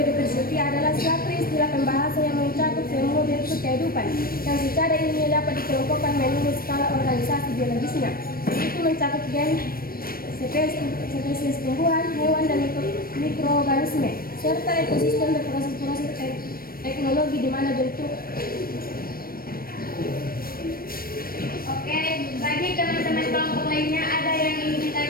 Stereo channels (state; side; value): late; right; 0.43 ms